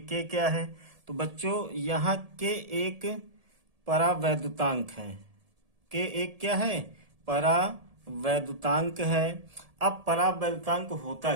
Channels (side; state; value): left; late; 1.7 ms